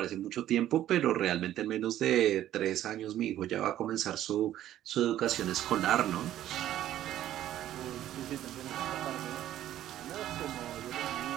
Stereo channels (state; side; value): quieter; left; 12.6 dB